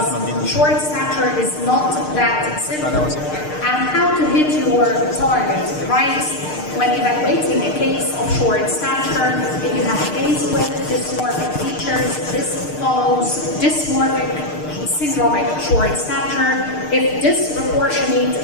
short stature is not that simple. And how to hit your target, right? When evaluating a case of short stature, if you have a case with dysmorphic features, this follows dysmorphic syndromic short stature. If disproportionate,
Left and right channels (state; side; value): late; right; 6.6 ms